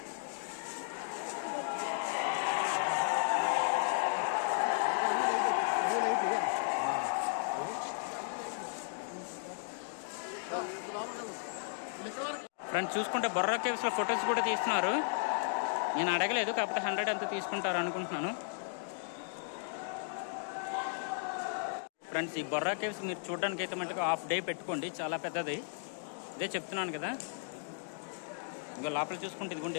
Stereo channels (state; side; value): silent; right; digital silence